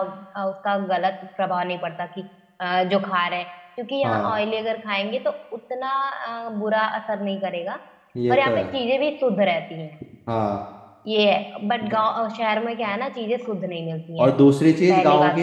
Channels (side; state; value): both; identical; correlation 1.00